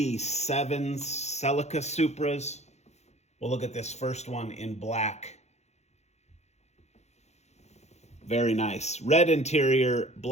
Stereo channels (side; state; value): right; late; 0.32 ms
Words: Celica Supras. We'll look at this first one in black. Very nice. Red interior,